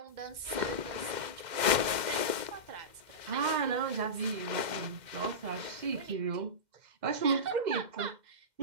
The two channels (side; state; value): left; late; 2.1 ms